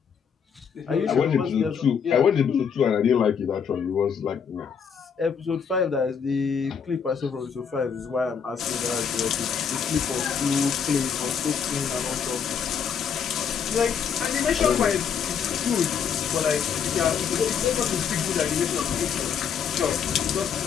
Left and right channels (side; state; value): right; quieter; 7.0 dB